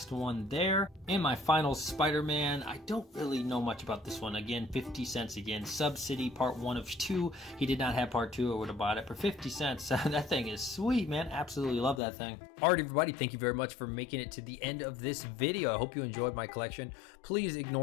one there. And my final Spider-Man. I don't really know much about this one. Again, 50 cents again. Subsidy, part 1 of 2. He did not have part 2. I would have bought it for 50 cents. That thing is sweet, man. Absolutely love that thing. Alright, everybody. Thank you very much for making it to the end of this video. I hope you enjoyed my collection. Please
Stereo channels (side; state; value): right; drops out; at 12.0 s